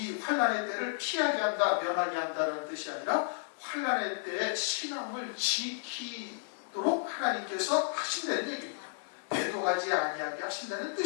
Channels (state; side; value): silent; right; digital silence